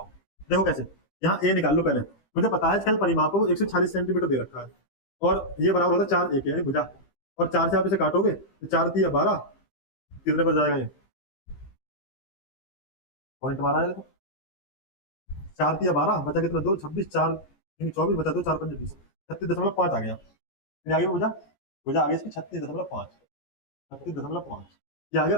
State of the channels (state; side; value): late; right; 15 ms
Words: देखो कैसे, यहाँ ए निकाल लो पहले। मुझे पता है इसका परिमाप है वो 140 सेंटीमीटर दे रखा है और ये बराबर होता है 4 एक यानी भुजा। और 4 से आप इसे काटोगे तो 4 3 12, कितने पर जाएगा ये पॉइंट हमारा है। देखो 4 3 12 बचा कितना, 2 26 4 24 बचा, 2 4 5 20, 36.5 आ गया। फिर आगे भुजा, भुजा आगे इसकी 36.5, 36.5 ये आ गया